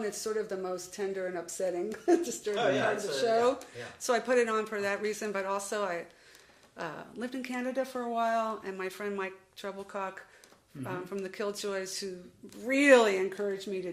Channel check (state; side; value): identical; both; correlation 1.00